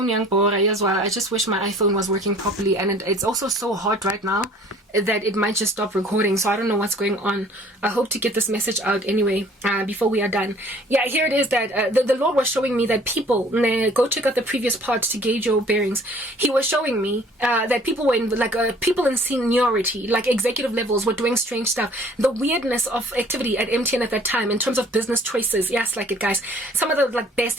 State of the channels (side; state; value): both; normal; correlation 0.54